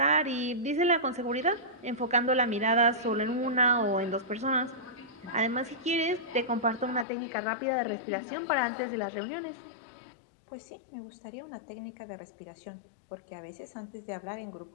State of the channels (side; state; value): right; drops out; at 7.1 s